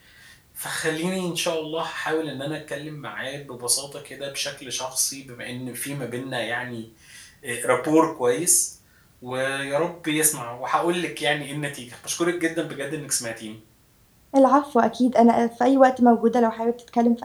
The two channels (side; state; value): both; identical; correlation 1.00